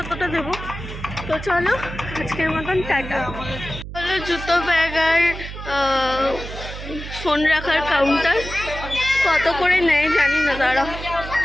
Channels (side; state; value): right; noise; hum, 10 dB below the sound